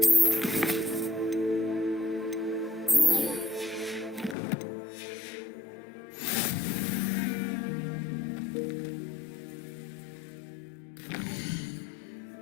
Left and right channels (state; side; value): drops out; right; at 4.4 s